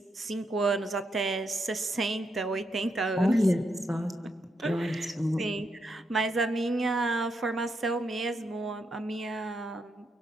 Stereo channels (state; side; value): normal; both; correlation 0.80